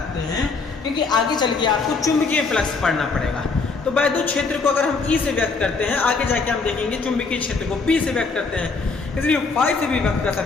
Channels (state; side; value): quieter; right; 4.3 dB